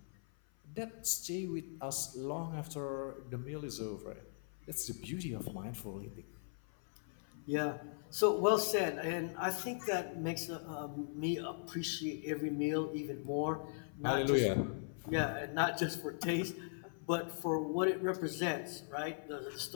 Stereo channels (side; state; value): right; silent; 52 dB below the other